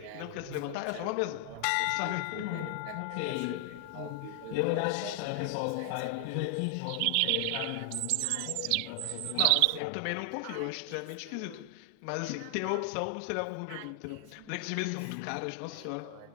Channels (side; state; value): both; different; correlation 0.00